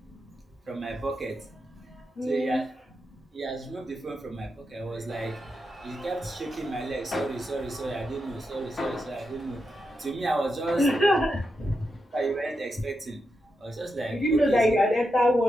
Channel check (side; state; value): both; normal; correlation 0.86